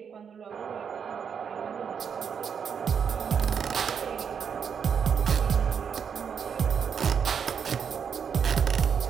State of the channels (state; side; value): quieter; left; 7.1 dB